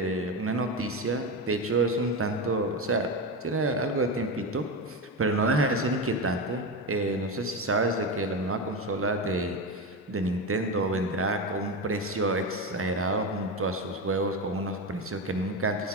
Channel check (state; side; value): normal; both; correlation 0.17